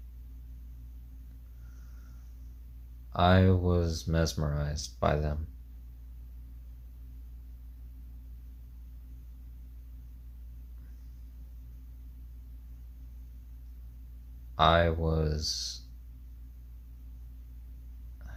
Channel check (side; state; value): both; identical; correlation 1.00